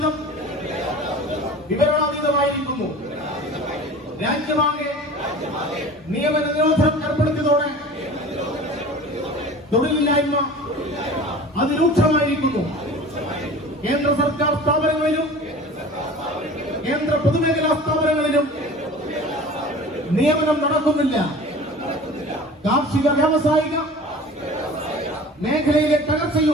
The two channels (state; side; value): normal; both; correlation 0.40